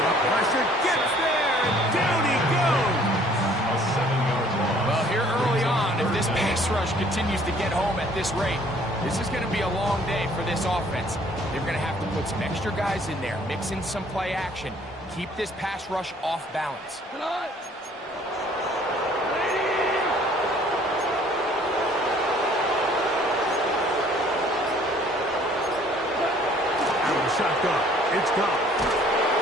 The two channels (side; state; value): both; normal; correlation 0.57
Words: Pressure gets there, and down he goes. Well, here early on, if this pass rush continues to get home at this rate, this is going to be a long day for this offense. They're going to have to put some extra guys in there, mix in some play action, keep this pass rush off balance. Out of the shotgun, it's gone.